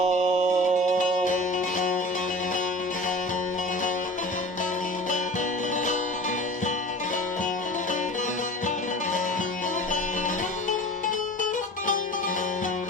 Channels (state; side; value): normal; both; correlation 0.38